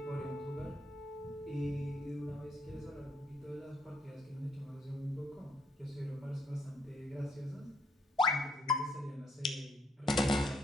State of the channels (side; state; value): both; normal; correlation 0.70